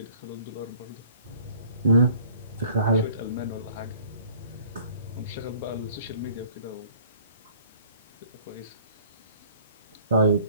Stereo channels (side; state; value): both; inverted; correlation -0.55